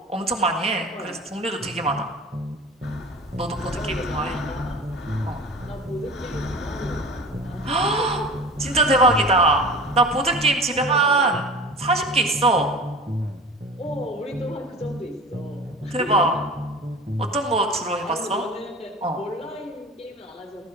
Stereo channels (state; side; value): normal; both; correlation 0.37